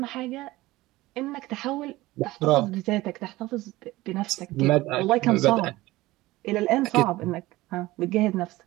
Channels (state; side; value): quieter; left; 18.6 dB